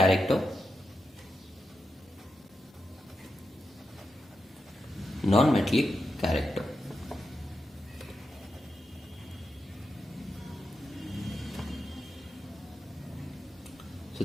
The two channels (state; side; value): normal; both; correlation 0.87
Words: non-metallic character. So